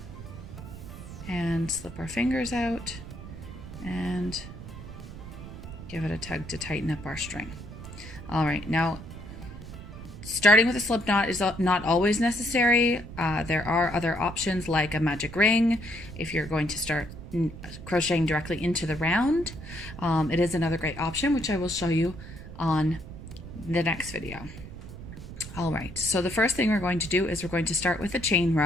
and slip our fingers out and give it a tug to tighten up our string. All right, now starting with a slip knot is not always necessary. There are other options like a magic ring if you're going to start crocheting directly into the round. It is another great option, which I will show you on the next video. All right, so the first thing we're going to do is we're going to start with a chain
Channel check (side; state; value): right; noise; rumble, 12 dB below the sound